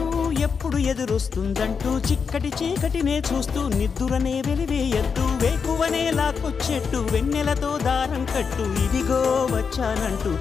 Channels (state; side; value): quieter; right; 5.9 dB